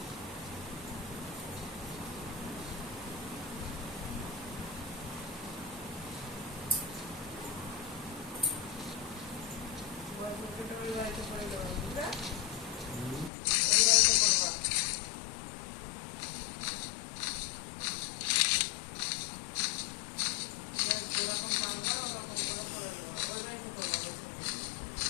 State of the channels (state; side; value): drops out; right; at 13.3 s